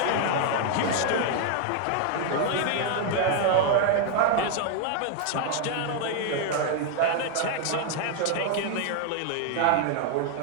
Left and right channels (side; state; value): both; different; correlation 0.00